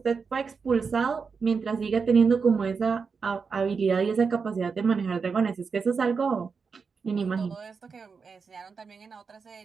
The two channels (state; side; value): quieter; left; 5.3 dB